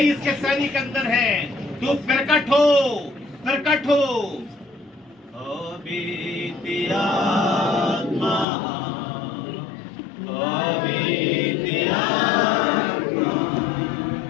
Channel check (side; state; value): right; drops out; at 8.5 s